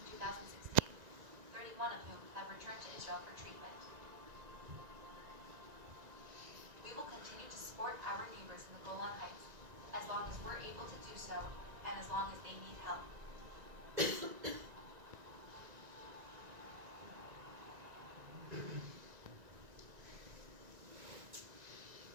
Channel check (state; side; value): late; left; 1.9 ms